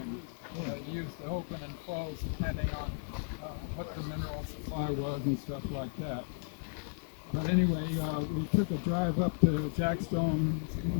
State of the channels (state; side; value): silent; right; digital silence